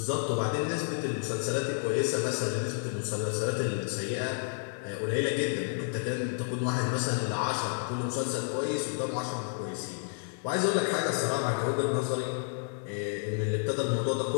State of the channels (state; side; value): silent; right; digital silence